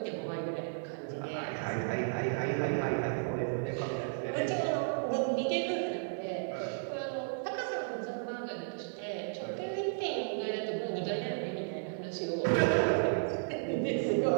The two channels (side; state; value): left; silent; digital silence